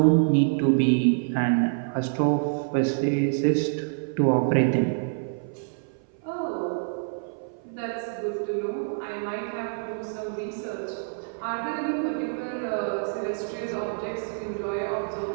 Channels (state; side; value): silent; left; 56 dB below the other